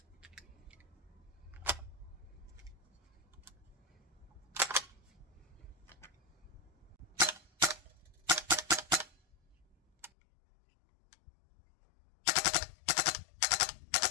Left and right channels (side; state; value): right; drops out; at 10.1 s